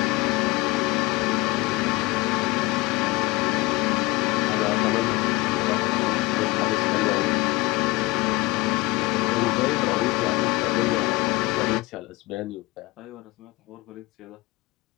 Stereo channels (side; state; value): right; quieter; 22.0 dB